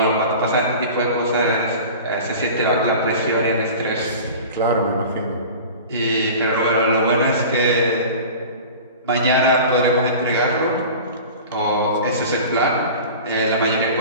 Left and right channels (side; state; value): both; inverted; correlation -0.37